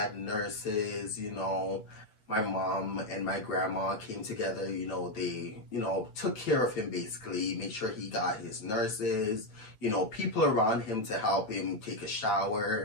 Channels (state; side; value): late; right; 9.1 ms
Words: nurses, you know, my mom and my grandma came together, you know, they, you know, took care of him basically, made sure he got his nurses, you know, people around him to help him take a